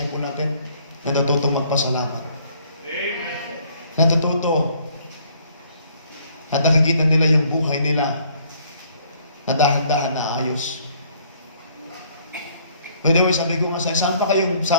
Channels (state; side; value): inverted; both; correlation -0.62